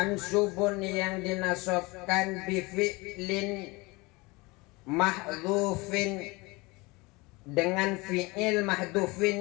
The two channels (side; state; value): right; quieter; 24.4 dB